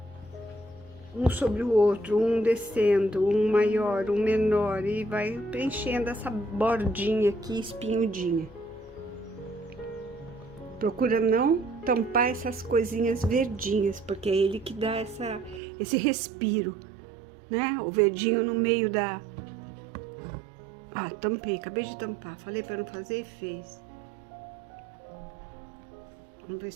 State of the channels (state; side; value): drops out; left; at 15.6 s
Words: um sobre o outro, um descendo, um maior, um menor, e vai preenchendo essa bordinha aqui espinhudinha. Procura não tampar essas coisinhas verdinhas, porque é ele que dá esse respiro, né? O verdinho no meio da... Ah, tampei, acabei de tampar. Falei para não fazer e fez. Vamos ver